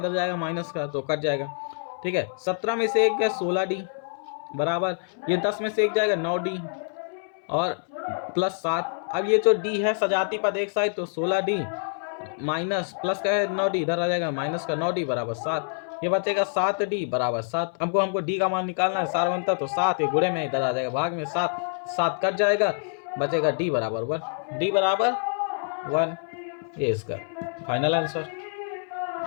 जाएगा माइनस का तो कट जाएगा, ठीक है। 17 में से 1 गया 16d बराबर, ये 10 में से 1 जाएगा 9d और प्लस 7। अब ये जो d है सजाती पद एक साइड, तो 16d माइनस प्लस का है 9d, इधर आ जाएगा माइनस का 9d बराबर 7, ये बचेगा 7d बराबर 7। हमको d का मान निकालना है सार्वंतर, तो 7 ये गुणे में इधर आ जाएगा भाग में 7, 7 कट जाएगा, बचेगा d बराबर 1, d बराबर 1, ये इसका फाइनल आंसर।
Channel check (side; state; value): right; silent; 61 dB below the other